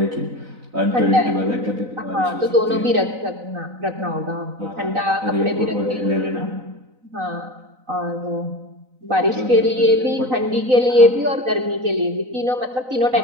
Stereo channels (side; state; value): left; late; 3.9 ms